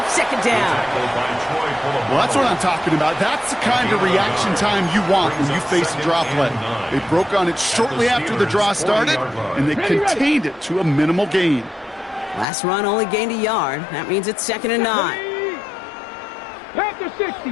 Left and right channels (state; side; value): drops out; right; at 12.5 s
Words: 2nd down. Well, that's what I'm talking about. That's the kind of reaction time you want when you face a draw play. They broke on it shortly after the draw started, and they contained it to a minimal gain. Last run only gained a yard. That means it's 2nd and 9. Panther